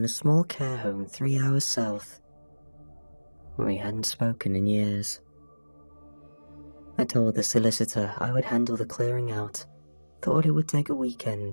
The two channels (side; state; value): both; inverted; correlation -1.00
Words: a small care home 3 hours south. We hadn't spoken in years. I told the solicitor I would handle the clearing out, thought it would take a